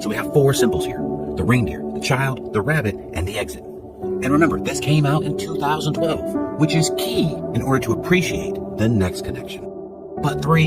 So we have 4 symbols here: the reindeer, the child, the rabbit, and the exit. And remember, this came out in 2012, which is key in order to appreciate the next connection. But 3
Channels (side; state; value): both; identical; correlation 1.00